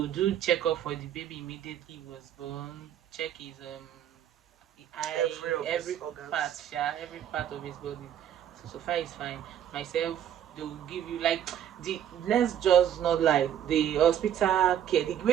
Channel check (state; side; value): quieter; left; 10.2 dB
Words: do checkup for the baby immediately he was born. Check his every part of his body. So far it's fine. Myself, they will give you like let's just not like the hospital care, the